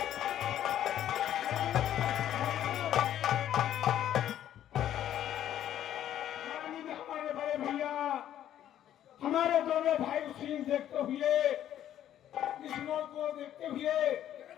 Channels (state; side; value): quieter; right; 11.3 dB